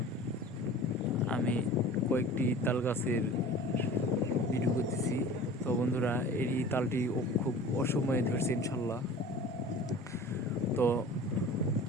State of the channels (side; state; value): both; normal; correlation 0.40